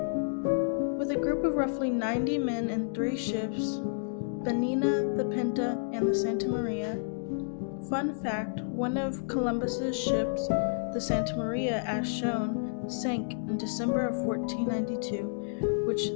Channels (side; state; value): right; silent; digital silence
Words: With a group of roughly 90 men and 3 ships, the Nina, the Pinta, and the Santa Maria. Fun fact, one of Columbus's ships, the Santa Maria as shown, sank in December of 1492, which